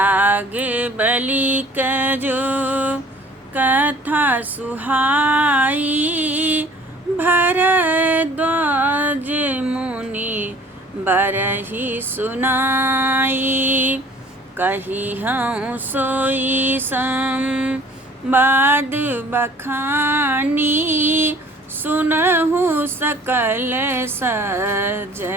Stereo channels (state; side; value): normal; both; correlation 0.51